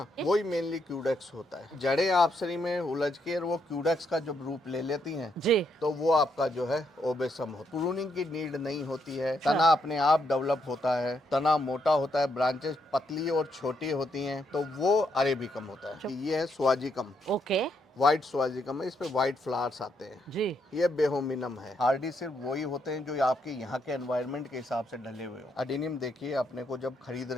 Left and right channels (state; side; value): normal; both; correlation 0.77